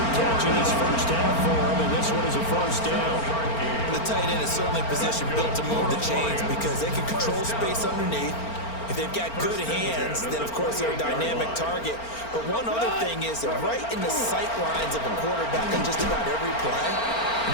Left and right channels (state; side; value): late; right; 4.4 ms